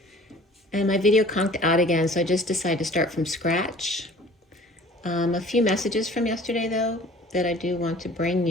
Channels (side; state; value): both; normal; correlation 0.48